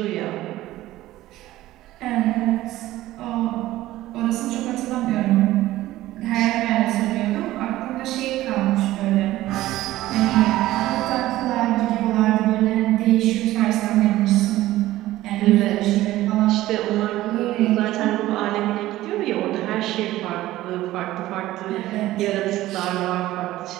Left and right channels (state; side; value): quieter; left; 15.8 dB